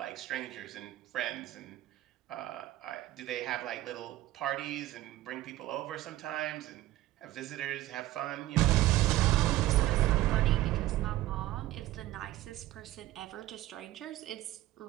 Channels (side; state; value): left; quieter; 15.9 dB